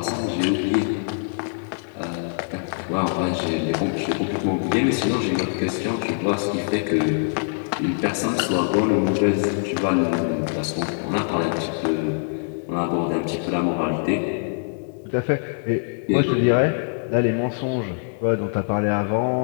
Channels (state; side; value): silent; right; digital silence